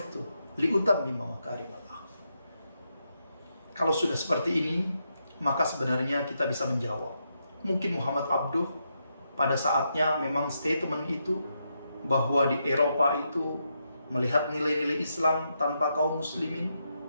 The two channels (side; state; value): both; inverted; correlation -0.82